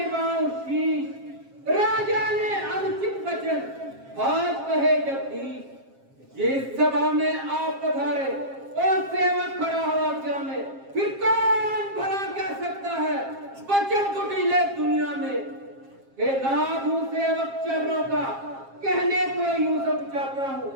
शीश। राजा ने वचन आज कहे जगदीश। जिस सभा में आप पधारे और सेवक खड़ा हुआ क्या में, फिर कौन भला कह सकता है वचन कुटिले दुनिया में। हे लाभू सेवक चरणों का कहने को यूं सब चाहता हूँ,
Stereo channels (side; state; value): left; late; 7.4 ms